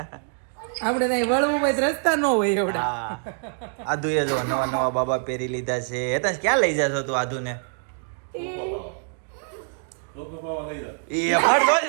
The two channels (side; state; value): left; silent; 56 dB below the other